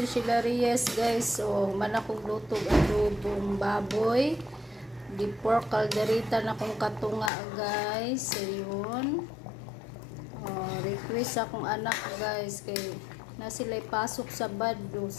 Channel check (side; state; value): right; drops out; at 7.3 s